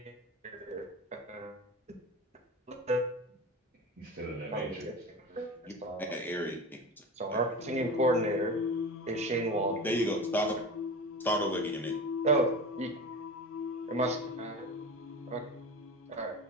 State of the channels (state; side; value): normal; both; correlation 0.30